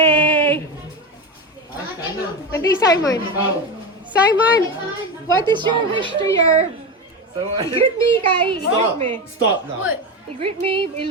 Hindi, Simon. Simon, what is your wish to your... I-greet me, Kai. I-greet me. Stop now. I-greet me,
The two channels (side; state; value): both; normal; correlation 0.18